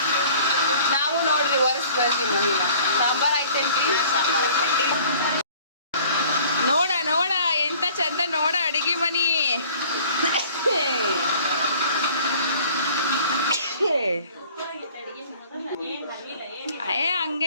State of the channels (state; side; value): inverted; both; correlation -0.51